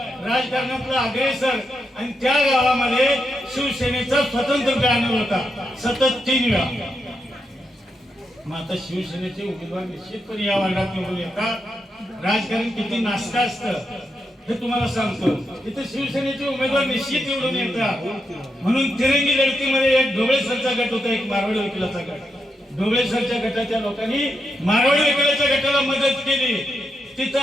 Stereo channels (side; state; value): both; normal; correlation 0.83